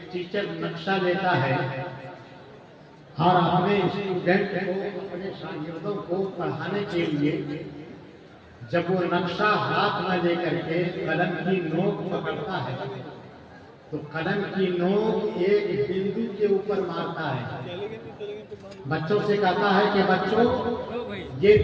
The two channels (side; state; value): both; identical; correlation 1.00